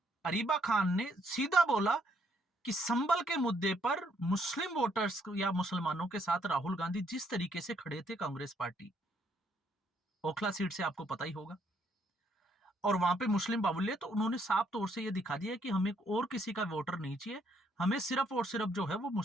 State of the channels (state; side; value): normal; both; correlation 0.71